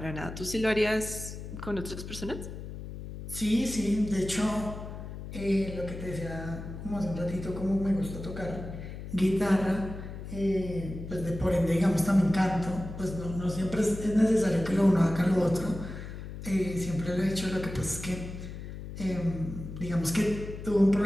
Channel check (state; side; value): noise; left; hum, 10 dB below the sound